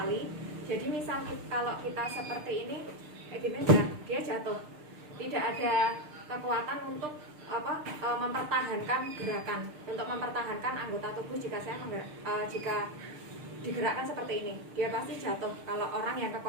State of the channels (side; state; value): left; late; 6.7 ms